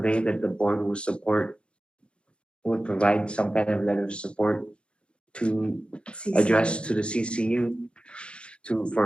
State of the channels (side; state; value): right; late; 0.056 ms